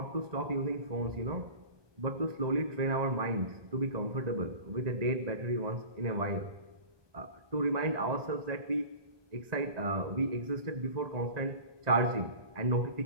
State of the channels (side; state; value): left; late; 1.2 ms